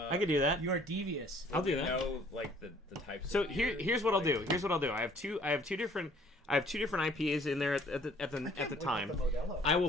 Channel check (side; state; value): both; normal; correlation 0.58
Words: can do that. you are devious. I'll do You that. know, like the types. So of beer, here's what I'll do. like- Here's what I'll do. I have two different IPAs in there at the time. Modelo. I will